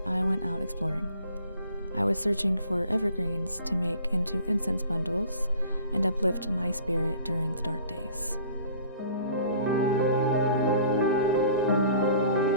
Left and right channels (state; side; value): inverted; both; correlation -0.50